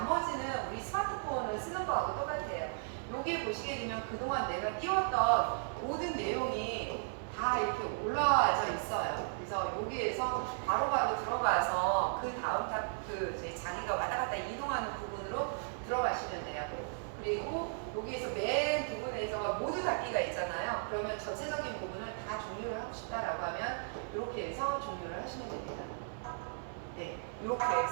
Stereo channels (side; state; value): left; silent; 54 dB below the other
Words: 우리 스마트폰을 쓰는 거하고 똑같아요. 여기 보시게 되면 그동안 내가 띄웠던 모든 내용이 다 이렇게 올라와져 있어요. 그래서 여기에서 바로바로 들어가서 그 다음 자기가 왔다 갔다 이동하는 부분으로 들어가시면 돼요. 그리고 여기에서 맨 부분에서 모두 닫기가 있잖아요. 그러면 전체적인 부분을 다 종료를 하고 싶다라고 하면 이렇게 해서 종료를 하시면 됩니다. 네, 이렇게